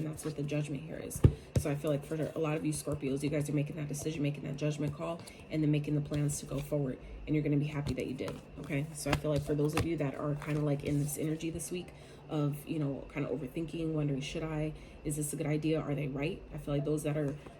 that's what the judgment here is. So I feel like for a lot of you Scorpios, you guys are making that decision, making that judgment call, and then making the plans to go forward, and you're going to be happy that you did, okay? So I feel like for those of you that are kind of like in this energy this week of, you know, kind of overthinking, wondering, is this a good idea? Are they right? I feel like those that are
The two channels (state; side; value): identical; both; correlation 1.00